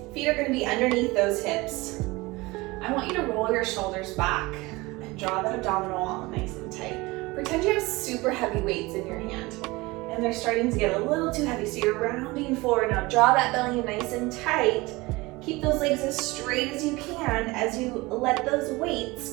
feet are going to be underneath those hips. I want you to roll your shoulders back and draw that abdominal wall nice and tight. Pretend you have super heavy weights in your hand and they're starting to get a little too heavy, so you're rounding forward. Now draw that belly nice and tight. Keep those legs as straight as you can as you let those weights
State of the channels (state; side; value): quieter; left; 22.3 dB